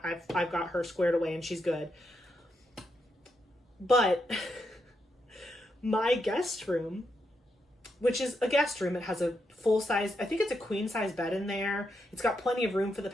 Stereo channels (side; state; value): both; normal; correlation 0.82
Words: got her squared away and she's good. But my guest room, which is a guest room, it has a full size, I think it's a queen size bed in there. It's got plenty of room for the